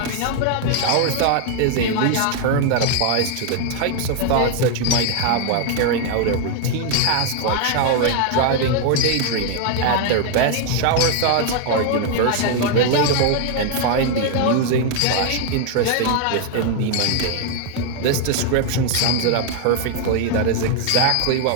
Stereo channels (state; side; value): different; both; correlation 0.00